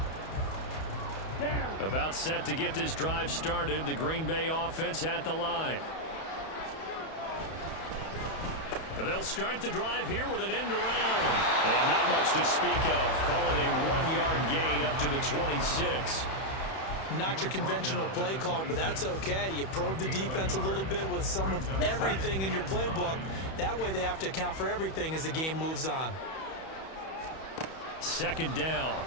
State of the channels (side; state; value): right; late; 31 ms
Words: About set to get this drive started. The Green Bay offense at the line. They'll start the drive here with an end around. And not much to speak of. Call it a 1-yard gain up to the 26. Not your conventional play call, but that's okay. You probe the defense a little bit with some of everything in your playbook. That way they have to account for everything as the game moves on. Second down.